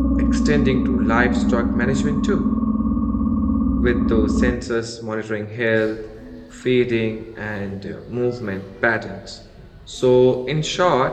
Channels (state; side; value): identical; both; correlation 1.00